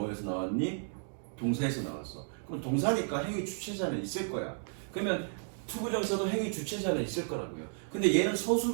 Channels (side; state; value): left; silent; digital silence